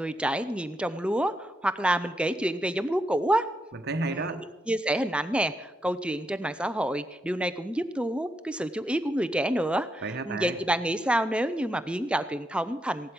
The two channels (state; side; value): normal; both; correlation 0.82